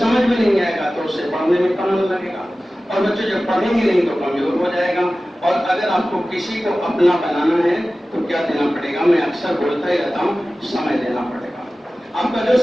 में नहीं आएगा तो उससे पढ़ने में कम मन लगेगा, और बच्चे जब पढ़ेंगे नहीं तो कमजोर हो जाएगा। और अगर आपको किसी को अपना बनाना है तो क्या देना पड़ेगा? मैं अक्सर बोलता ही रहता हूँ, समय देना पड़ेगा। आपका जो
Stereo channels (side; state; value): both; normal; correlation 0.96